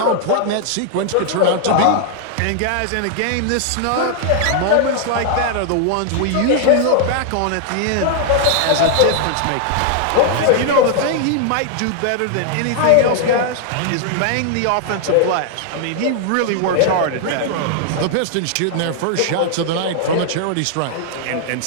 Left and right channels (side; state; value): both; different; correlation -0.01